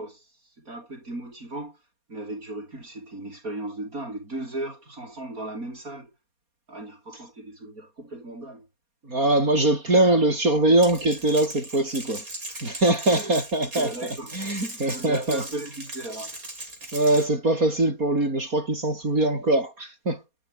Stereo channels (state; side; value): late; left; 4.2 ms